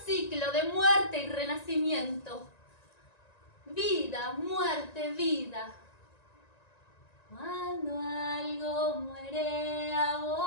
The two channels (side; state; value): right; late; 1.9 ms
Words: ciclo de muerte y renacimiento. Vida, muerte, vida. Cuando algo muere,